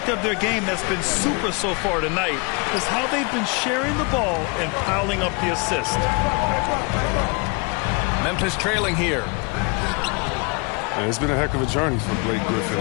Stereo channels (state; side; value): quieter; right; 31.4 dB